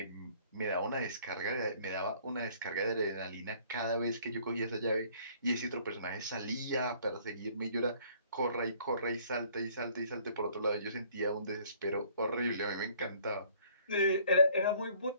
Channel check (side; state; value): both; inverted; correlation -0.58